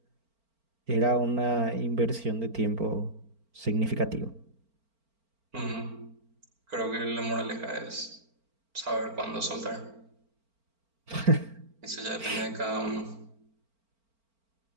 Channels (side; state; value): left; late; 4.4 ms